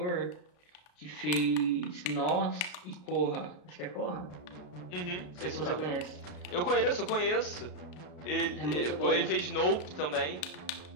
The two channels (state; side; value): late; right; 33 ms